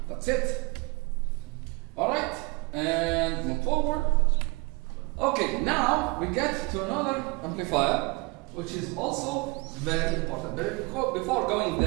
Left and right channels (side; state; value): left; quieter; 26.8 dB